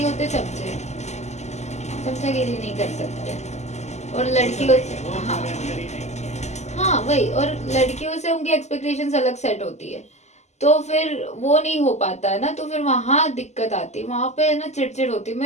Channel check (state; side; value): late; right; 0.33 ms